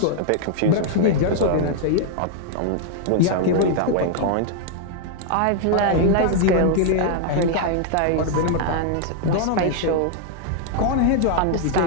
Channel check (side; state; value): both; different; correlation 0.00